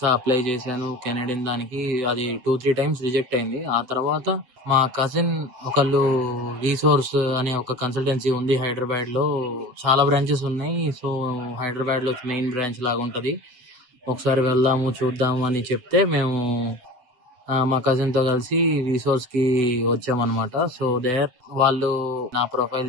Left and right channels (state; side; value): late; left; 7.9 ms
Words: అప్లై చేశాను. కెనడియన్ దానికి అది 2-3 టైమ్స్ రిజెక్ట్ అయింది. ఆ తర్వాత మా కజిన్ ఒకళ్ళు రీసోర్స్ అనే ఒక కన్సల్టెన్సీ ఉంది హైదరాబాద్‌లో. చాలా బ్రాంచెస్ ఉన్నాయి. సో, హైదరాబాద్‌లో మెయిన్ బ్రాంచ్ లాగా ఉంటది. ఒకసారి వెళ్దాము, చూద్దాము అని చెప్తే మేము మా కజిన్‌తో కలిసి రిసోర్స్‌కి వచ్చామనమాట. సో, వాళ్ళు నా ప్రొఫైల్